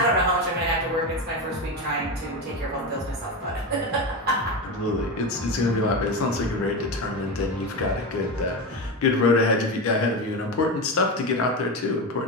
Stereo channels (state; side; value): normal; both; correlation 0.18